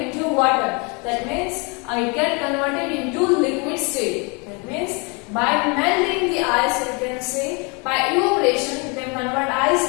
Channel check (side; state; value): right; quieter; 31.5 dB